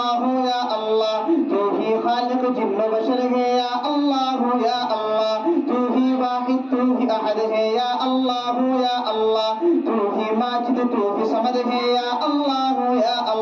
या अल्लाह तू ही खालिक जिन्न बशर है या अल्लाह या अल्लाह तू ही वाहिद तू ही अहद है या अल्लाह तू ही माजिद तू ही समद है या अल्लाह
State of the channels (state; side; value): identical; both; correlation 1.00